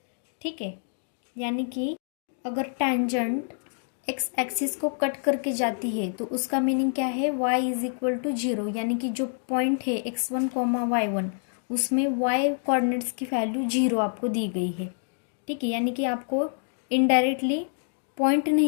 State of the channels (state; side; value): silent; right; 60 dB below the other